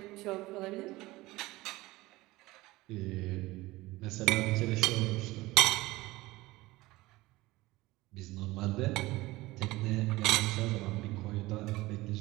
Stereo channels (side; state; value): left; quieter; 19.5 dB